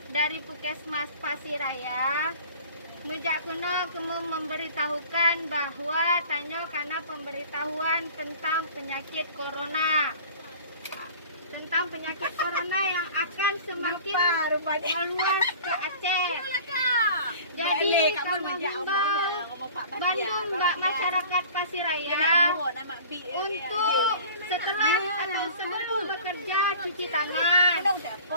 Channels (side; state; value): both; inverted; correlation -0.43